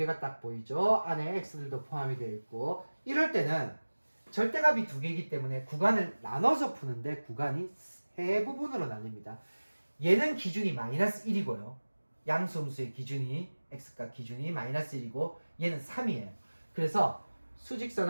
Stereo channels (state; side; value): inverted; both; correlation -1.00